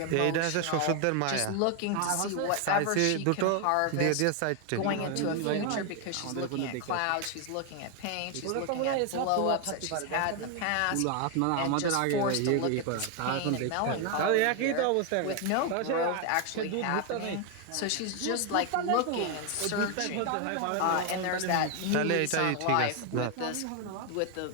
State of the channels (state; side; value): different; both; correlation 0.01